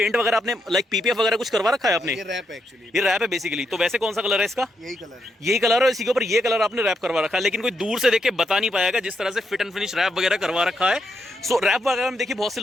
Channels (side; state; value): both; normal; correlation 0.80